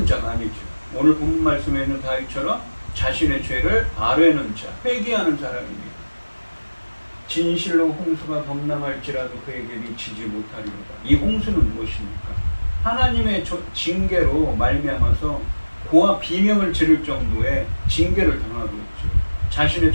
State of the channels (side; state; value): both; inverted; correlation -1.00